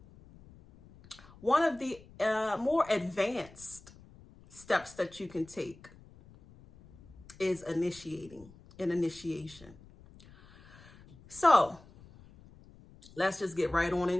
one of the more advanced steps that you can take is initiation. So let's just get right on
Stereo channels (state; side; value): noise; left; rumble, 23 dB below the sound